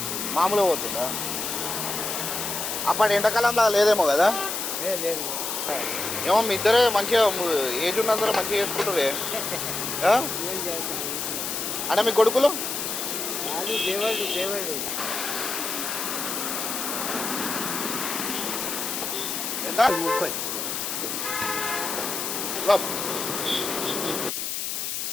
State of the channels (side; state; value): left; noise; hiss, 3 dB below the sound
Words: మామూలుగా పోతుందా? అప్పటి ఎండాకాలంలో లేదేమో కదా. ఏమో మీ ఇద్దరే మంచిగా ఏజ్ ఉన్నందరూ మంచిగా చేసుకుంటారే. అంటే మీ కొడుకులు ఎంత? 30.